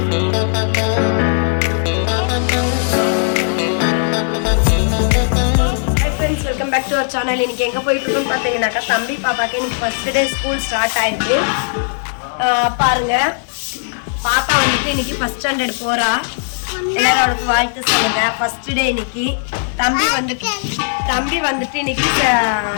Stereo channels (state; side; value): silent; right; digital silence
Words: welcome back to our channel. இன்னைக்கு எங்கே போயிட்டு இருக்கோம்னு பார்த்தீங்கன்னாக்கா, தம்பி பாப்பாக்கு இன்னைக்கு ஃபர்ஸ்ட் டே ஸ்கூல் ஸ்டார்ட் ஆயிருக்கு. பாருங்க, பாப்பா வந்துட்டு இன்னைக்கு ஃபர்ஸ்ட் ஸ்டாண்டர்ட் போறா. எல்லாரும் அவளுக்கு வாழ்த்து சொல்லுங்க. ஃபர்ஸ்ட் டே இன்னைக்கு. தம்பி வந்துட்டு இன்னைக்கு